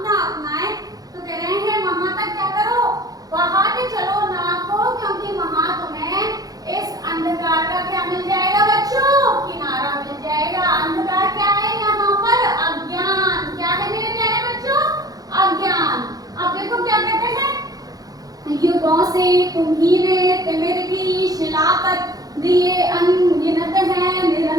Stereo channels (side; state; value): left; late; 0.18 ms